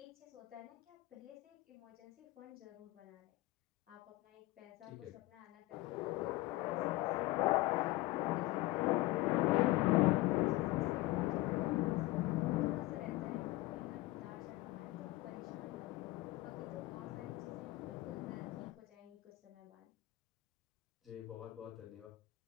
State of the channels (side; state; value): right; quieter; 18.9 dB